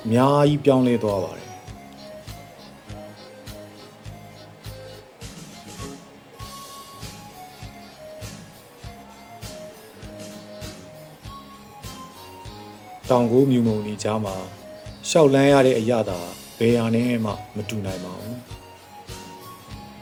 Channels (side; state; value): both; identical; correlation 1.00